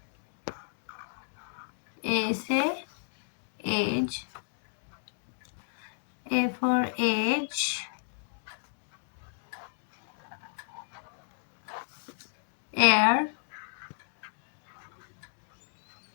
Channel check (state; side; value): silent; right; digital silence